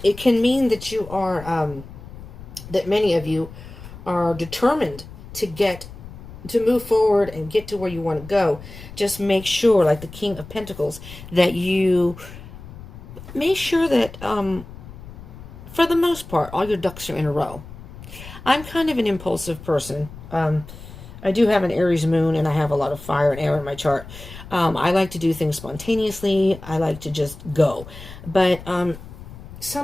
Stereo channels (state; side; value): noise; left; rumble, 15 dB below the sound